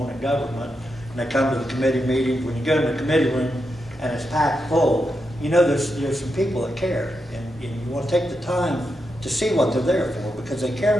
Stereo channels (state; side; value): normal; both; correlation 0.86